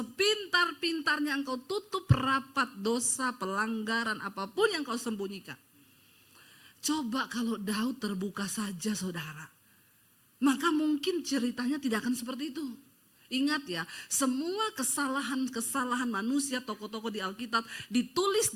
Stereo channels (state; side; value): identical; both; correlation 1.00